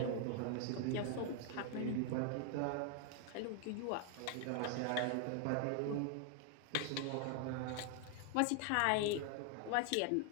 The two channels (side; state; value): both; different; correlation 0.00